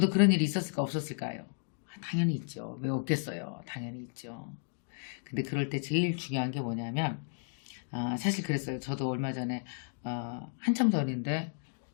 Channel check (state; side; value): silent; right; digital silence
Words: 그런 일이 있었을까 없었을까요? 당연히 있죠. 왜 없겠어요? 당연히 있죠. 근데 그럴 때 제일 중요한 게 뭐냐면 사실 그랬어요. 저도 얼마 전에 한참 전인데